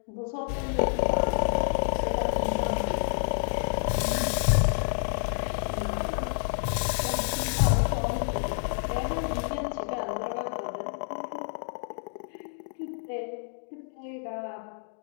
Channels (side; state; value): right; silent; digital silence